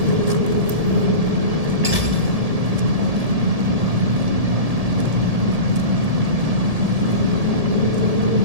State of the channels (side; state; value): left; late; 1.7 ms